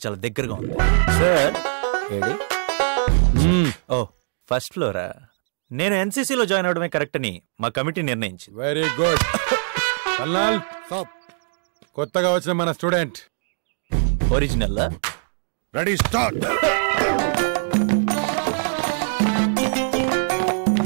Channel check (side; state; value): left; silent; digital silence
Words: చాలా దగ్గరగా ఉంది సార్. ఏడి? ఓ ఫస్ట్ ఫ్లోరా. నేను ఎన్సీసీలో జాయిన్ అవడమే కరెక్ట్ అని మా కమిటీ నిర్ణయించింది. Very good. కొత్తగా వచ్చిన మన student original. Ready start.